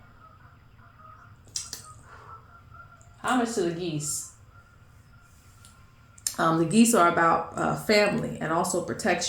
How much to the geese? The geese are about family and also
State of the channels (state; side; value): identical; both; correlation 1.00